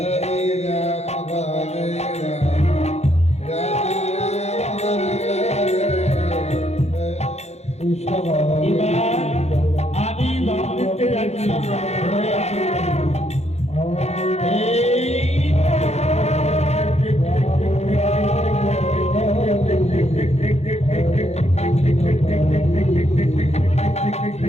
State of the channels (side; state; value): right; late; 0.31 ms